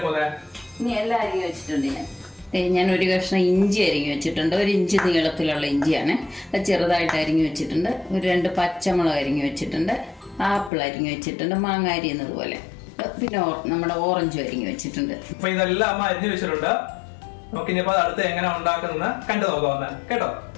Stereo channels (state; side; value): drops out; right; at 10.7 s